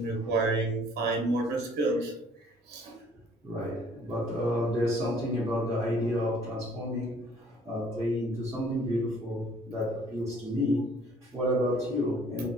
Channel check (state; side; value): normal; both; correlation 0.58